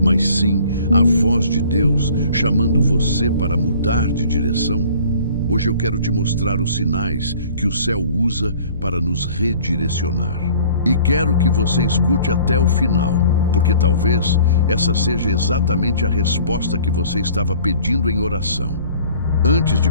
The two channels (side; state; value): both; inverted; correlation -0.51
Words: sim a voz de Deus chamando você para mudar de direção? Hoje eu quero te mostrar os sinais que o céu usa para nos redirecionar. E quero que você escute até o final, porque talvez essa seja exatamente a resposta que você estava pedindo em oração. Antes de